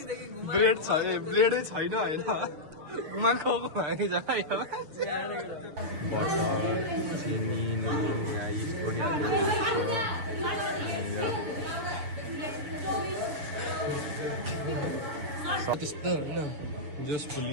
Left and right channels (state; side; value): late; left; 6.7 ms